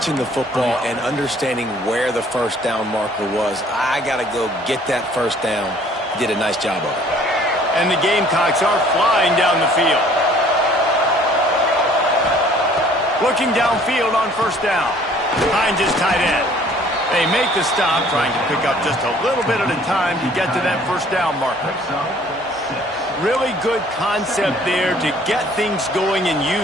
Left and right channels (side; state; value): both; normal; correlation 0.56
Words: the football and understanding where the first down marker was. I got to go get that first down. Did a nice job of it. And the Gamecocks are flying down the field. Looking downfield on first down. Behind his tight end. They make the stop, trying to pick up just a little bit at a time to get to that first down marker. Really good concept there to get things going and